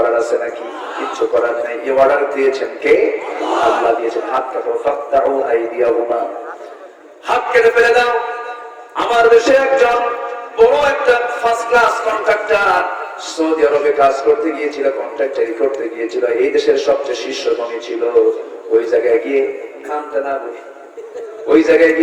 আছে নাকি? কিছু করার নাই। এই অর্ডার দিয়েছেন কে? আল্লাহ দিয়েছেন। হাত কাটো, ফাকতাউ আইদিয়াহুমা, হাত কেটে ফেলে দাও। আমার দেশে একজন বড় একটা ফার্স্ট ক্লাস কন্ট্রাক্টর সৌদি আরবে কাজ করতে গিয়েছিল, কন্ট্রাক্টরি করতে গিয়েছিল। এই দেশের সবচেয়ে শীর্ষধনী ছিল। ওই জায়গায় গিয়ে খামটা না বলি, ওই জায়গায়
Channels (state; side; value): identical; both; correlation 1.00